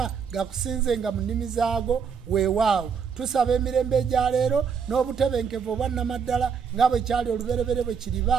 gakusinzenga mu nnimi zaago weewaawo tusaba emirembe egya leero n'obutebenkevu obwannamaddala nga bwe kyali oluberebere bwe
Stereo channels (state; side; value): quieter; left; 6.5 dB